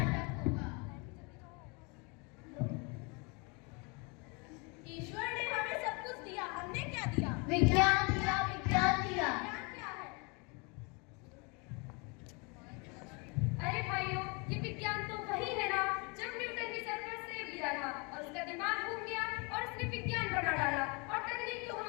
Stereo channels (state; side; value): quieter; right; 30.9 dB